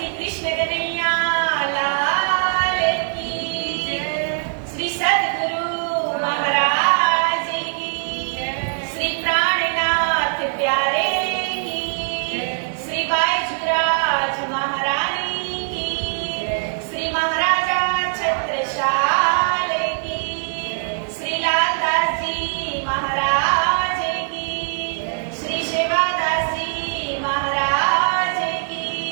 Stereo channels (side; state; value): left; silent; 65 dB below the other